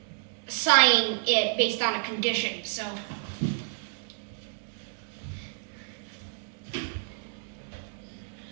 assign it based on a condition.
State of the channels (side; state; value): left; silent; digital silence